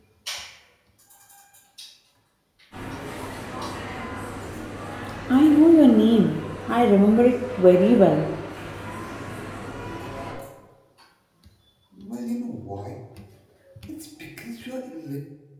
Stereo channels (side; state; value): both; identical; correlation 1.00